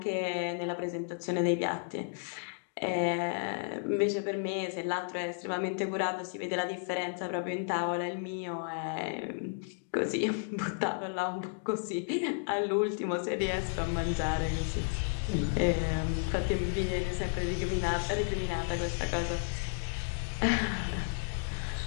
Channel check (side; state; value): right; silent; digital silence